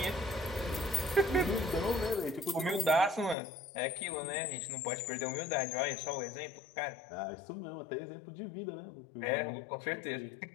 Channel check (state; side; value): drops out; right; at 3.4 s